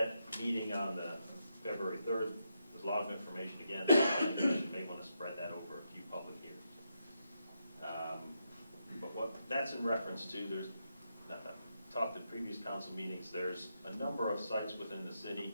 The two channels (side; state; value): both; inverted; correlation -0.83